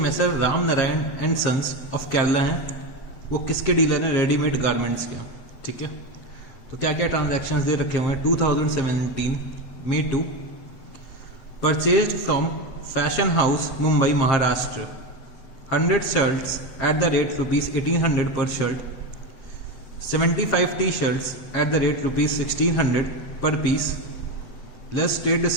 Ramnarayan and sons of Kerala हैं, वो किसके डीलर हैं? रेडीमेड गारमेंट्स के। ठीक है, तो क्या क्या ट्रांजैक्शंस दे रखे हुए हैं? 2017 Me Too purchased from fashion house Mumbai Maharashtra 100 shirts at the rate ₹1800 per shirt, 75 t-shirts at the rate ₹1600 per piece, less trade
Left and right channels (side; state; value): right; late; 7.9 ms